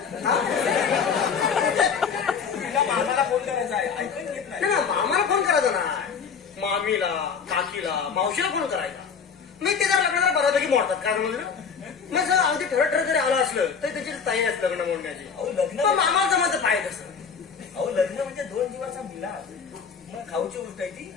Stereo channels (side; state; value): right; quieter; 6.2 dB